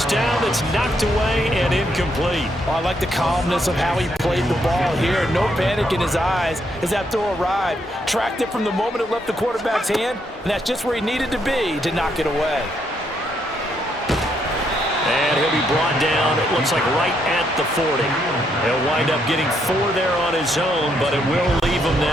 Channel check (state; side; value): normal; both; correlation 0.75